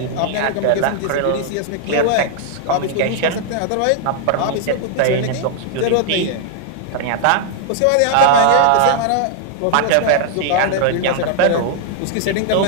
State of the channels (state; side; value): different; both; correlation -0.01